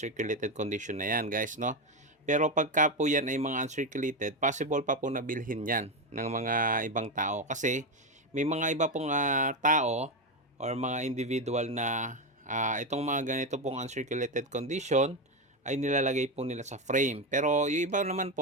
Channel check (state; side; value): normal; both; correlation 0.12